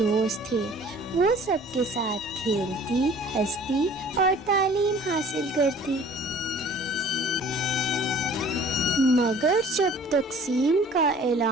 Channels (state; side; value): normal; both; correlation 0.50